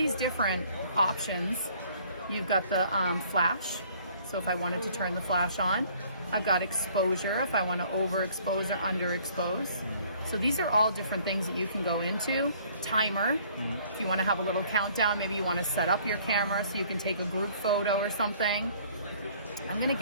different options. You've got the flash. So if I wanted to turn the flash on, I've got exposure if I want to overexpose or underexpose. So these are all different things that you can go into. Timer, if you want to have a little countdown, maybe you want to set up your camera so you can take a group photo or something. I'm going to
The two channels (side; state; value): both; inverted; correlation -0.57